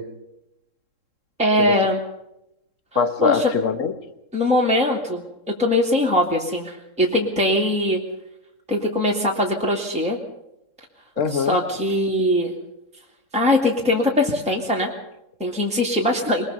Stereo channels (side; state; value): left; late; 3.7 ms